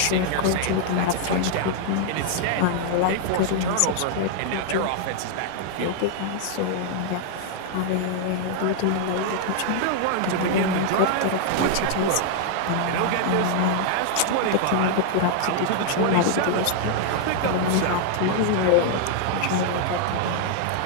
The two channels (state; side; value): different; both; correlation 0.00